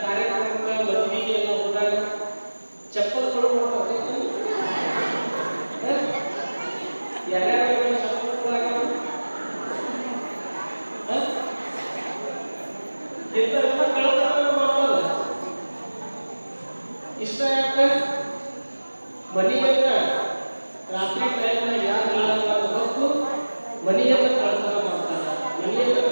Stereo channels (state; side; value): inverted; both; correlation -1.00